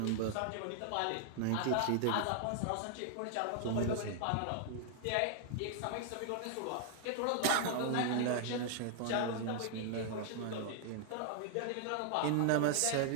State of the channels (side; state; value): both; different; correlation 0.00